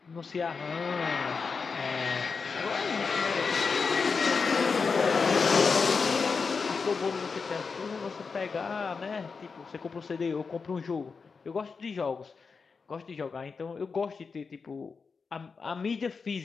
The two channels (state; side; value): quieter; right; 5.0 dB